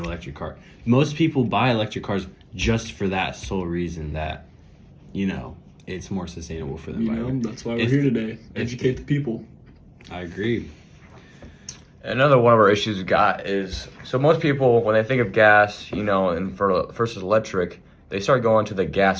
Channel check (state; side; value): identical; both; correlation 1.00